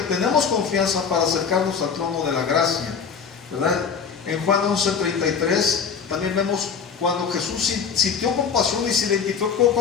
tenemos confianza para acercarnos al trono de la gracia, ¿verdad? En Juan 11:33 también vemos cuando Jesús sintió compasión y se identificó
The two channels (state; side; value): quieter; right; 6.4 dB